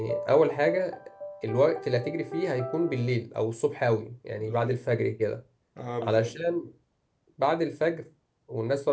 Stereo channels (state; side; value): identical; both; correlation 1.00